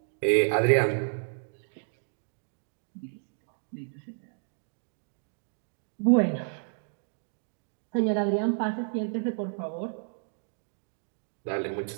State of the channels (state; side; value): silent; left; digital silence